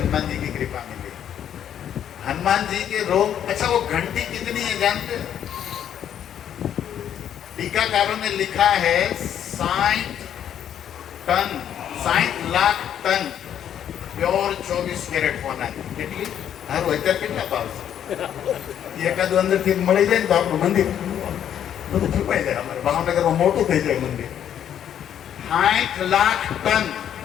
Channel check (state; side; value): quieter; right; 9.8 dB